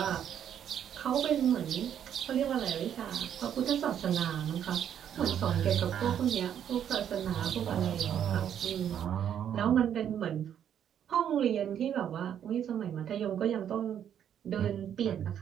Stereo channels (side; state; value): left; quieter; 9.4 dB